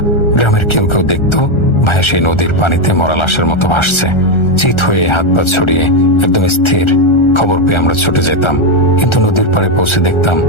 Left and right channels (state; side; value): late; right; 1.3 ms